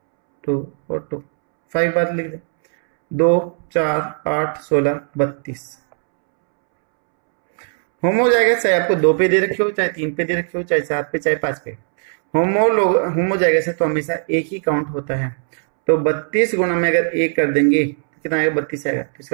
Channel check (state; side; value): silent; left; 67 dB below the other